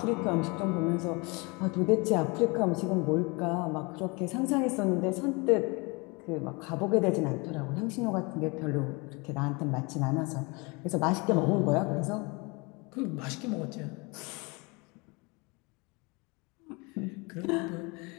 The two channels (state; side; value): quieter; right; 28.1 dB